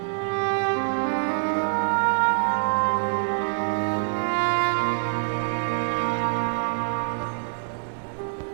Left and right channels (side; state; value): left; silent; digital silence